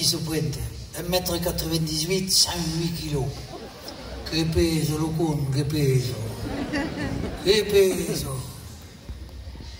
se pointe. 1,98 m, 108 kg. Que peso, lo con, que peso. Que peso.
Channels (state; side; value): identical; both; correlation 1.00